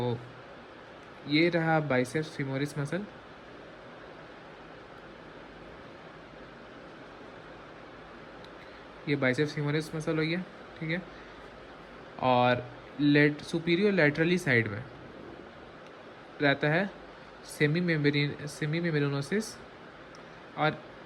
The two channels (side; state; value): both; identical; correlation 1.00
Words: ये रहा बाइसेप्स फीमोरिस मसल। ये बाइसेप्स फीमोरिस मसल हो गया। ठीक है, और सुपीरियर लेटरली साइड में रहता है सेमी मेम्ब्रेनोसिस, और